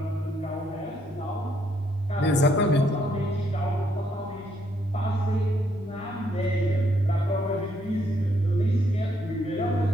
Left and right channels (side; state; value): both; normal; correlation 0.73